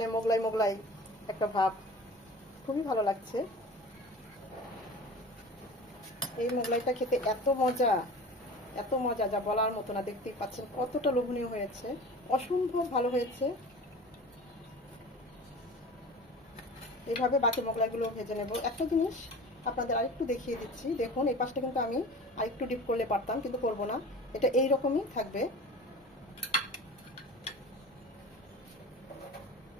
মোগলাই মোগলাই একটা ভাব, খুবই ভালো লাগছে। এই মোগলাইটা খেতে এত মজা, এত মজা যা বলার মতো না। দেখতেই পাচ্ছেন কতটা লোভনীয় হয়েছে, অসম্ভব ভালো হয়েছে। এইভাবে বাকি মোগলাইগুলো ভেজে নেব। একটা জিনিস আপনাদের আরেকটু দেখিয়ে দিচ্ছি, দেখুন এই পাশটা কিন্তু আমি আরেকটু ডিপ করলে পারতাম, কিন্তু করবো না, এটা এইরকমই থাকবে।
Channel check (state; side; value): normal; both; correlation 0.37